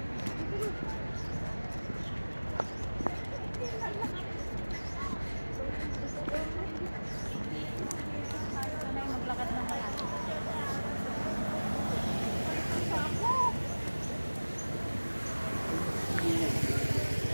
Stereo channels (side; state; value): both; inverted; correlation -1.00